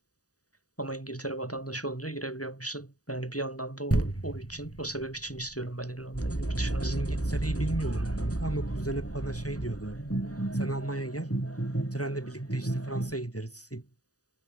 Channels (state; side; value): late; right; 0.67 ms